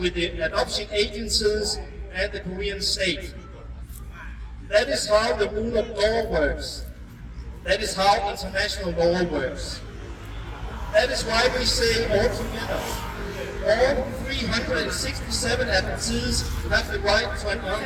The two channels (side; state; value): both; identical; correlation 1.00